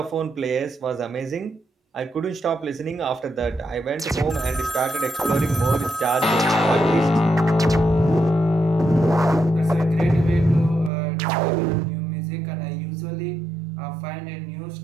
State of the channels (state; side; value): drops out; left; at 10.9 s